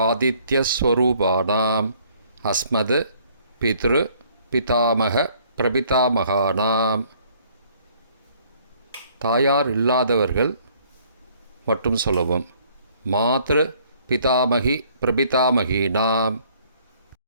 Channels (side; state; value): both; inverted; correlation -0.61